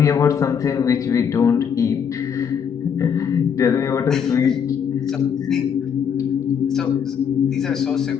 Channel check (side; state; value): right; quieter; 7.4 dB